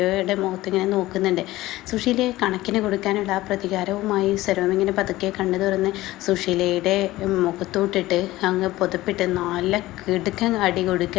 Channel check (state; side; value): quieter; right; 17.3 dB